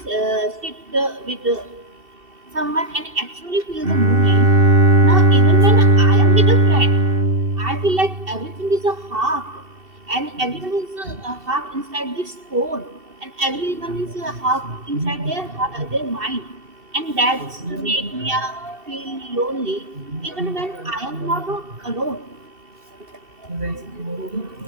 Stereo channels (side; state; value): left; late; 2.7 ms